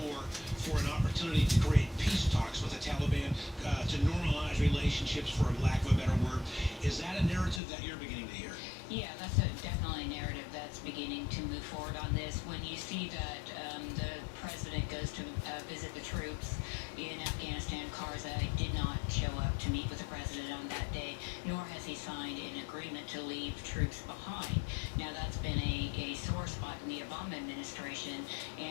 for an opportunity to create peace talks with the Taliban, to normalize relationships, for lack of a better word. Is that a narrative that you're beginning to hear? Yeah, that's definitely a narrative that's beginning to move forward on this. When you see that the president goes to visit the troops in Afghanistan, Karzai did not show up to meet with the president on that day, nor has he signed an agreement to leave troops behind. Now, that's been a sore spot in the Obama administration,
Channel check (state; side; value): drops out; right; at 7.6 s